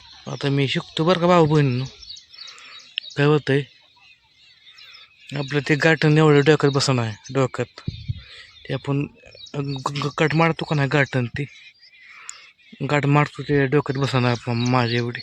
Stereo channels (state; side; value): identical; both; correlation 1.00